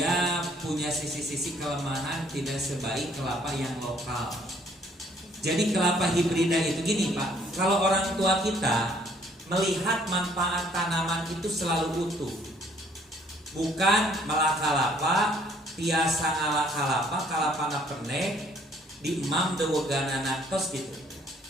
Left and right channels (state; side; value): normal; both; correlation 0.62